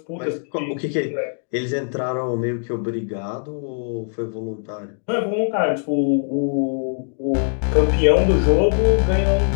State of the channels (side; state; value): right; silent; 60 dB below the other